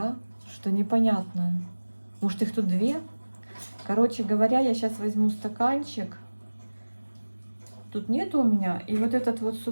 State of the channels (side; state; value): both; inverted; correlation -1.00